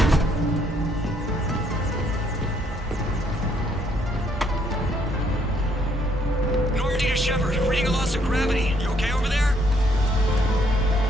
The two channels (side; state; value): both; normal; correlation 0.69